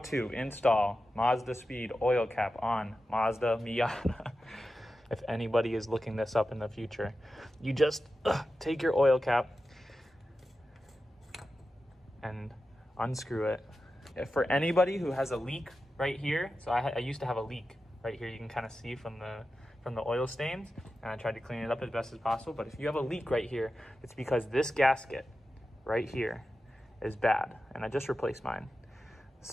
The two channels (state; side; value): normal; both; correlation 0.92